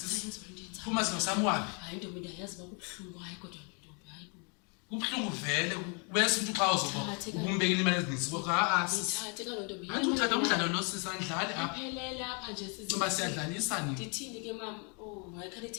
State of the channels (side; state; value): right; quieter; 35.8 dB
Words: Phuma sino samwabi. Hayi ntombi ndayazi bakubhlungu hayi kodwa ntombi hayi bo. Kubhlungu vele bese umuntu xa uzoba ukumbekela imali ezininzi kodwa Ngithathe kalo ntombi. Antu uthatha umdlalo lo sisandlali apha. Aphelele apha nje sisi. Ngoba siyadlalisa nini? Ndithini ke mama? Oh, hayi khale